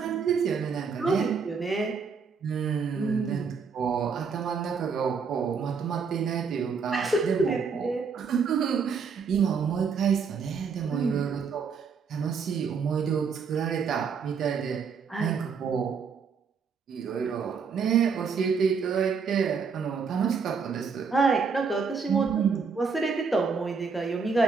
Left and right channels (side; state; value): left; quieter; 5.6 dB